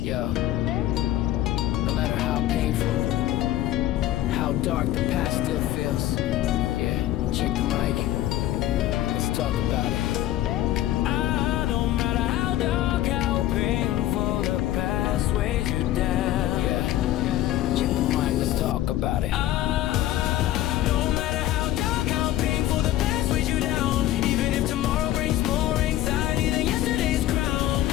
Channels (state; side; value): quieter; right; 14.0 dB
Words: Yo, no matter how painful, how dark the past still feels. Yeah, check the mic. Let's talk about it. No matter how dark, how painful, the past weighs you down. Yeah, check the mic. Let's talk about it. No matter how dark, how painful, the past weighs you down. Even if tomorrow brings more anxiety than yesterday's crown.